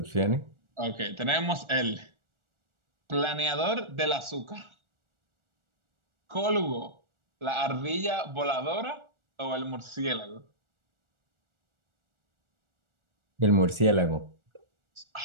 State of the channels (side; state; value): left; late; 1.4 ms